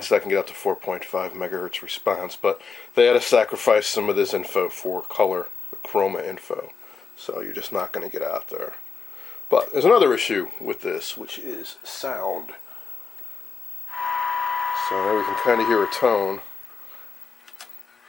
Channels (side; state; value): right; quieter; 5.4 dB